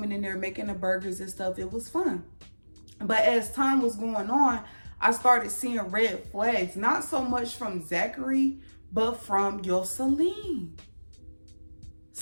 in there, making the burgers and stuff. It was fun. But as time was going on, I started seeing red flags. Not so much from Zachary, but from Yoselin.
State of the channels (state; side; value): inverted; both; correlation -1.00